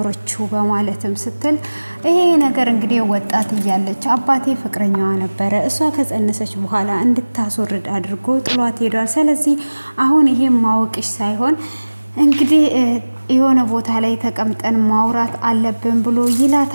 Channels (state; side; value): inverted; both; correlation -1.00